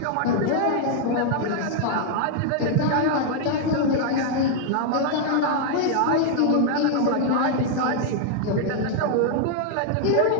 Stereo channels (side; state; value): both; different; correlation 0.00